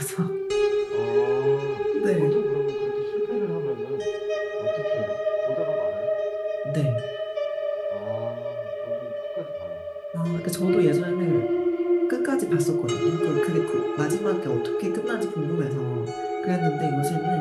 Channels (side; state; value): both; identical; correlation 1.00